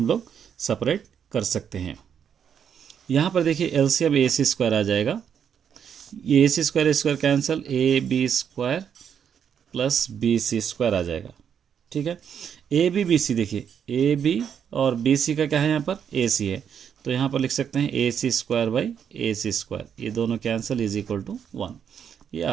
लोग सेपरेट कर सकते हैं। यहाँ पर देखिए एलसीएम ए सी स्क्वायर आ जाएगा, ये A C square cancel, A B square plus B C square आ जाएगा, ठीक है। ए बी सी, देखिए ए बी और बी सी का क्या है यहाँ पर, ए सी है, तो यहाँ पर लिख सकते हैं A C square by A C square, ये दोनों कैंसिल इज इक्वल टू 1, ये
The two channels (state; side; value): quieter; left; 8.0 dB